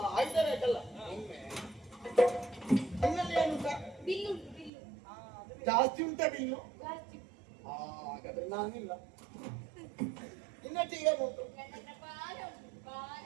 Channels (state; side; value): drops out; left; at 4.7 s